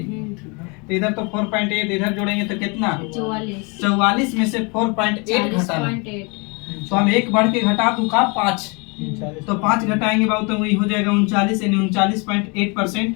तो इधर तो 4.8 इधर जोड़ेंगे तो कितना? 44 में से 4.8 घटाना, तो हम एक बढ़ के घटा दूंगा 5, तो 5 घटाएंगे बाबू तो वही हो जाएगा 39, यानी 39.8%।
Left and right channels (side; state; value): right; quieter; 30.9 dB